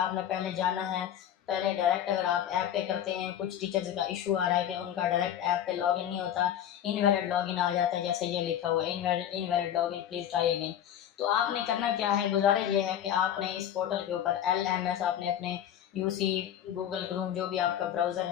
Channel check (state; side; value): quieter; right; 10.4 dB